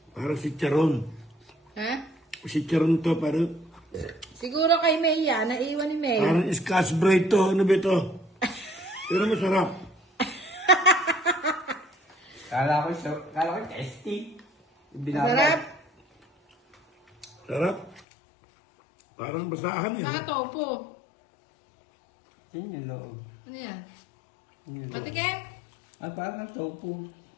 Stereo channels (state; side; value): drops out; right; at 18.1 s